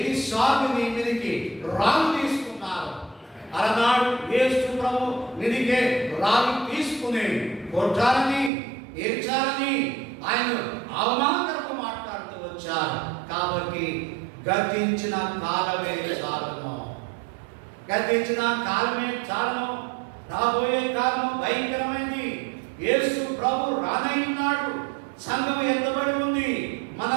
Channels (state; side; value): drops out; left; at 8.5 s